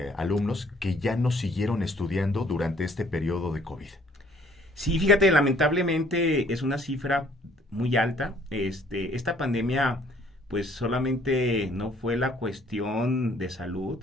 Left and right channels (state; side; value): normal; both; correlation 0.60